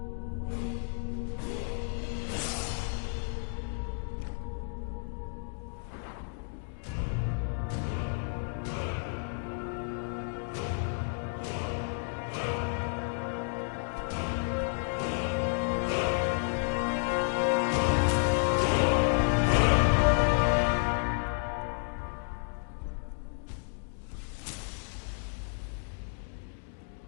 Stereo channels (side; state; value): right; silent; 57 dB below the other